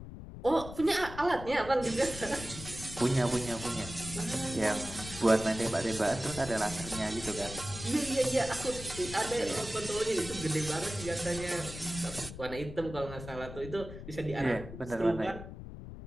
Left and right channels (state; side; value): noise; left; rumble, 11 dB below the sound